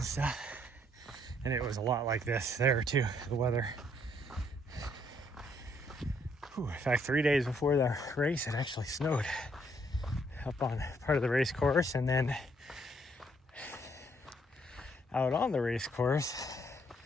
stuff. And it was a lot like this there too, the weather. In fact, 3 days before the race, it actually snowed up on part of the race course, and then out on the race course,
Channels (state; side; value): normal; both; correlation 0.69